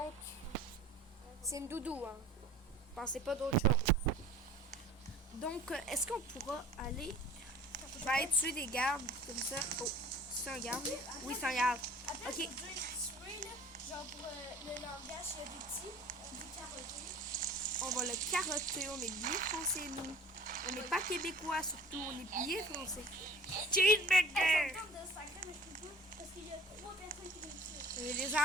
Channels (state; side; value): normal; both; correlation 0.46